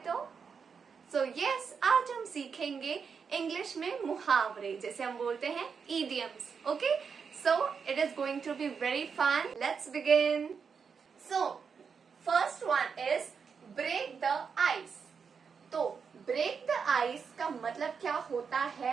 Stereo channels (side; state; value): left; quieter; 6.0 dB